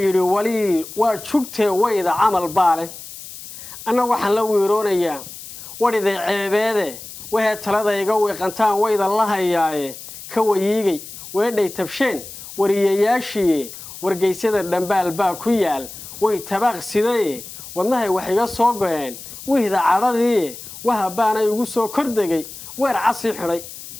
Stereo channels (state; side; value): noise; left; hiss, 13 dB below the sound